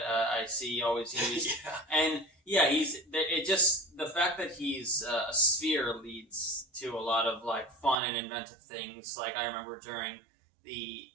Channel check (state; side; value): drops out; left; at 8.0 s